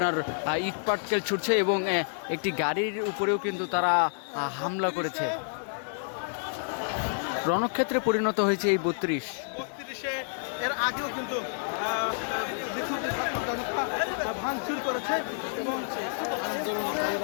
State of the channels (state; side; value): silent; right; digital silence